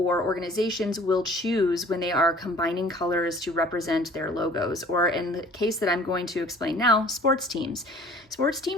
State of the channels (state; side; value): normal; both; correlation 0.50